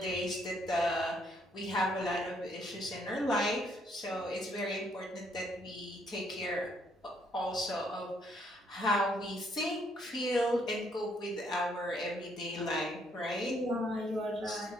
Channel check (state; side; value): normal; both; correlation 0.70